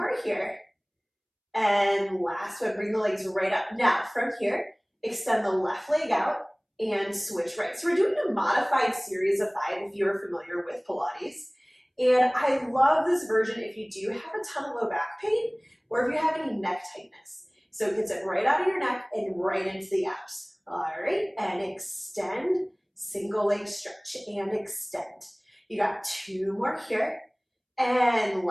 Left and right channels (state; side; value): identical; both; correlation 1.00